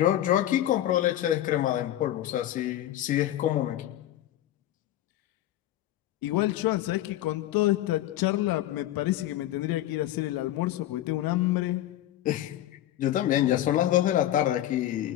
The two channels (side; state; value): right; quieter; 13.4 dB